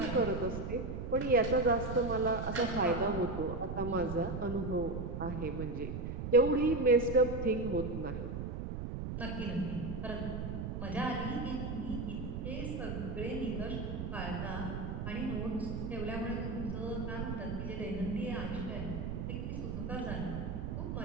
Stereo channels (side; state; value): right; noise; rumble, 4 dB below the sound